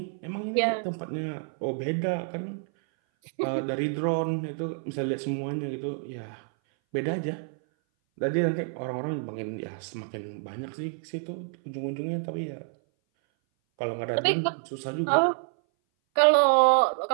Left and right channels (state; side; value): silent; left; 58 dB below the other